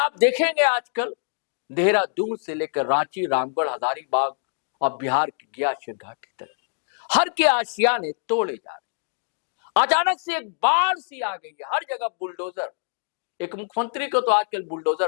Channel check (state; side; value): silent; right; digital silence